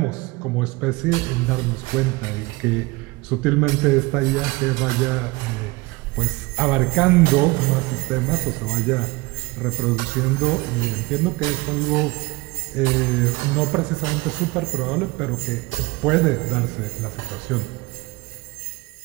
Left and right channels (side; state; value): left; quieter; 22.9 dB